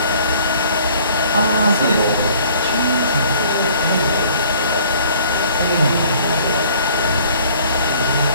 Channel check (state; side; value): inverted; both; correlation -0.55